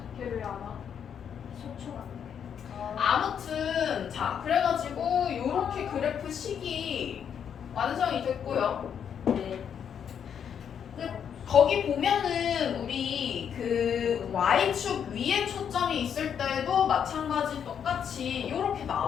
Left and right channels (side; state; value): right; quieter; 8.1 dB